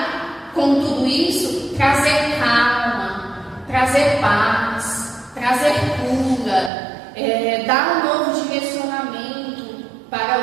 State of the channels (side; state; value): left; drops out; at 6.7 s